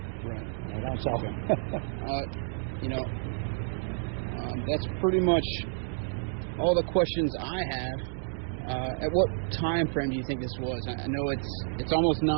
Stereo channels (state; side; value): silent; left; digital silence